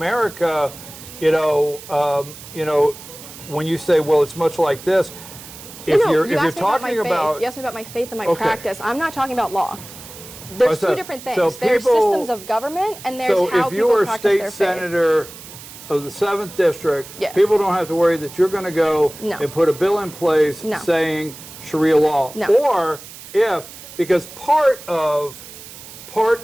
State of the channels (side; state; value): right; noise; hiss, 16 dB below the sound